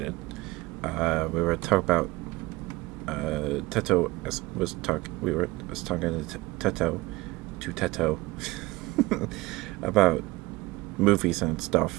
We were talking about Teto was talk. We were was talking to Teto about movies and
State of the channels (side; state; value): left; quieter; 20.7 dB